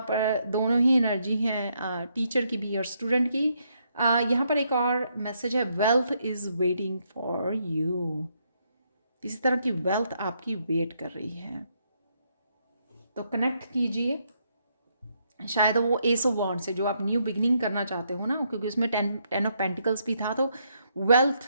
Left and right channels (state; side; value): inverted; both; correlation -0.75